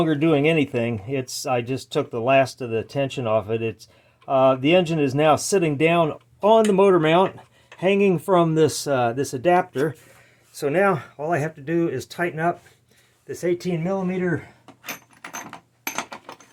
doing anything. I just took the last of the tension off it. The engine is now sitting down on the motor mount, hanging from this this adapter. So now all I have to do is tighten up this 18mm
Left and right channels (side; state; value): both; identical; correlation 1.00